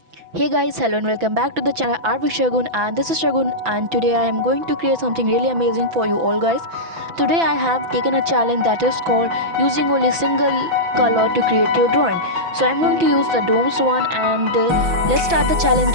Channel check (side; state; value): left; late; 6.0 ms